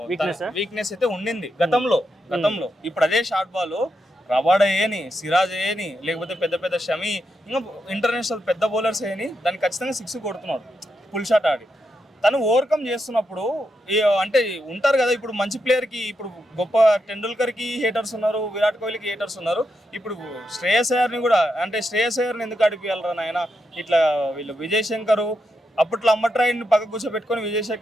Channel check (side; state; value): both; normal; correlation 0.84